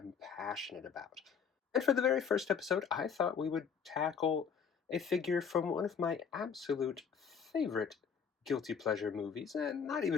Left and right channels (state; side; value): quieter; right; 6.6 dB